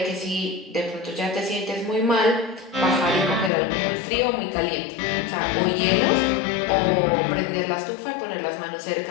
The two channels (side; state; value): right; drops out; at 3.5 s